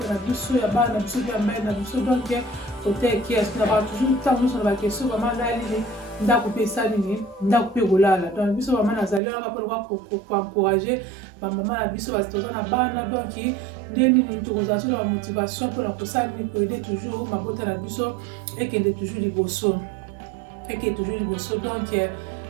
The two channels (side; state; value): left; drops out; at 9.2 s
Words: na biso ya bana biso ya mère na biso donc côté qui est na ba toujours temps nous sur la question maman na ali nda couper ça nini nda couper golala donc biso maman na zali ala pour encourager ba maman na biso ba toza na bana donc nini toza sur la motivation pour la kosa ni pour aider toujours mabuto na biso et qu'elle est toujours liboso et qu'elle est toujours liboso donc